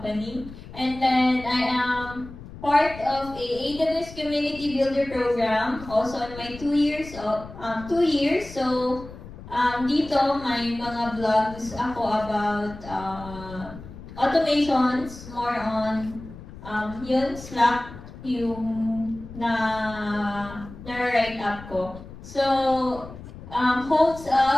And then I am part of a AWS Community Builder program, also in my 2 years. So, dito may mga vlogs ako about automations, more on yun, Slack, yung na-write up ko. So, holds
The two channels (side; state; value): left; noise; rumble, 15 dB below the sound